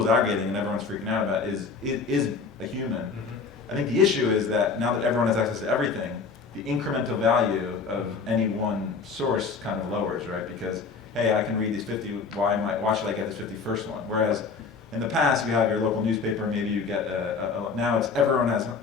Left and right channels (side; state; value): right; quieter; 4.9 dB